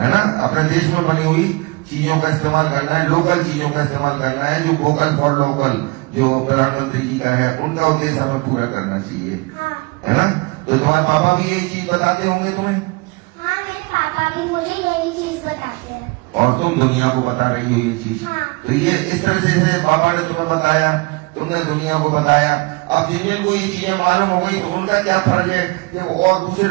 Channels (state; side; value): quieter; left; 26.3 dB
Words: ना। अपने देश में बनी हुई चीजों का इस्तेमाल करना है, लोकल चीजों का इस्तेमाल करना है, जो वोकल फॉर लोकल जो प्रधानमंत्री जी का है, उनका उद्देश्य हमें पूरा करना चाहिए, है ना। तो तुम्हारे पापा भी यही चीज बताते होंगे तुम्हें? हाँ, मेरे पापा भी मुझे यही चीज बताते हैं और तुम दुनिया को बता रही हो ये चीज। तो ये इस तरह से पापा ने तुम्हें बताया, तुमने दुनिया को बताया। अब जिनको ये चीजें मालूम हो गई तो उनका क्या फर्ज है कि वो और दूसरे